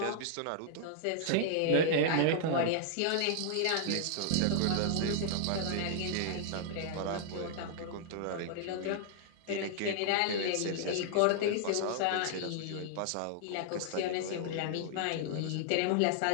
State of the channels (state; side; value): different; both; correlation -0.01